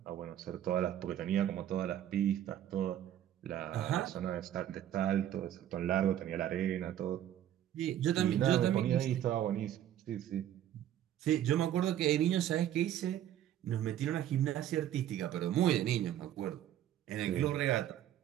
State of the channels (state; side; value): quieter; left; 11.4 dB